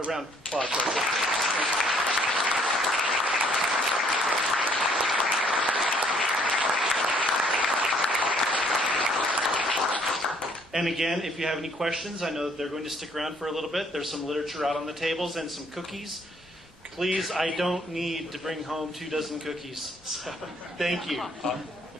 round of applause. And again, if you have any questions, I know they're going to stick around for a little bit. There's some literature out on the tables and some cookies. Please, I don't need to bring home 24 cookies. So, thank you.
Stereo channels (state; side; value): normal; both; correlation 0.63